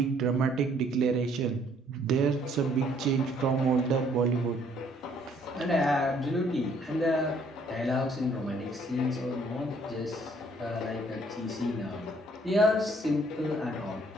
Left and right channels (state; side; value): normal; both; correlation 0.63